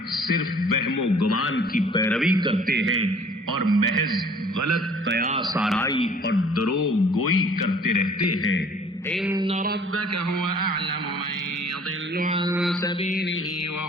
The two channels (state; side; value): normal; both; correlation 0.53